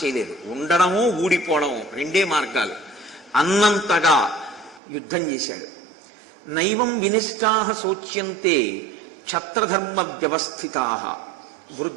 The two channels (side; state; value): left; drops out; at 4.8 s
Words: చేయలేదు. ఉండడము ఊడిపోవడము రెండే మార్గాలు. అన్నంతగా యుద్ధం చేశాడు. నైవం వినిష్టాః శోచ్యంతే క్షత్రధర్మ వ్యవస్థితాః